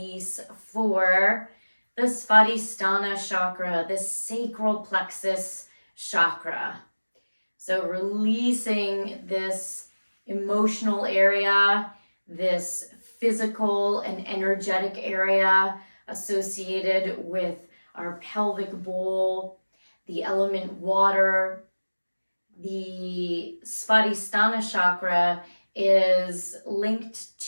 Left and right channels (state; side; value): inverted; both; correlation -1.00